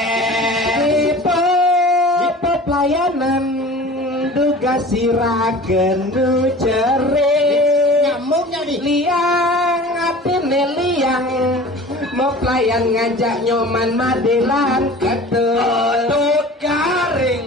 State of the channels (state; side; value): normal; both; correlation 0.40